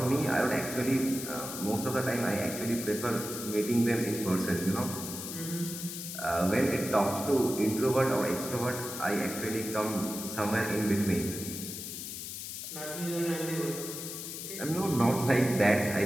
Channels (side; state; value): left; noise; hiss, 7 dB below the sound